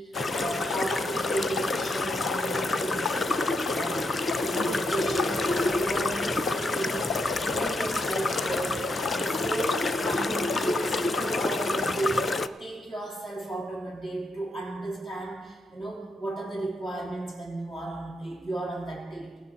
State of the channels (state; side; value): normal; both; correlation 0.80